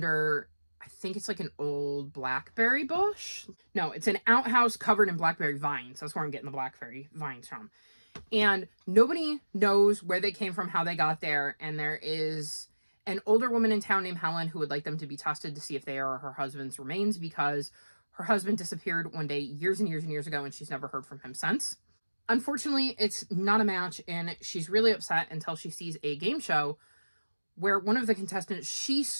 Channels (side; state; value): both; inverted; correlation -1.00